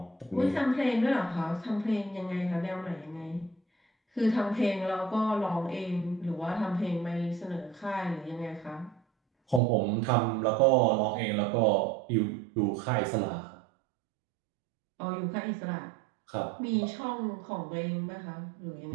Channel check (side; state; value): left; drops out; at 9.6 s